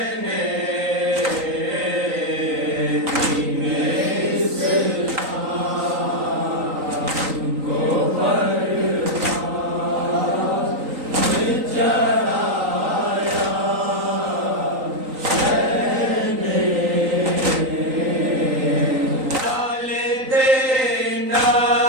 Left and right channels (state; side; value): late; left; 3.9 ms